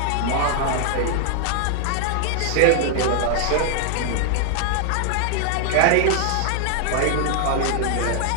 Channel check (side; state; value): both; different; correlation 0.00